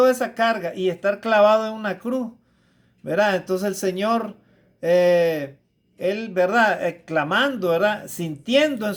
esa carga y estar clavado en una cruz, ¿verdad? Entonces el Señor, Él, ¿verdad? Clamando, ¿verdad? Sintiendo en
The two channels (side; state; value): both; identical; correlation 1.00